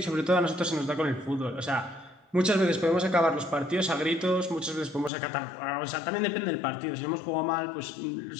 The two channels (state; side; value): drops out; right; at 5.1 s